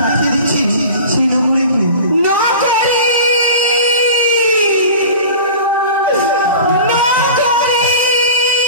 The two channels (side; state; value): both; inverted; correlation -0.37